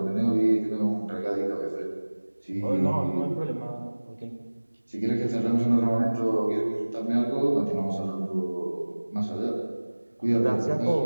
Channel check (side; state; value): both; inverted; correlation -1.00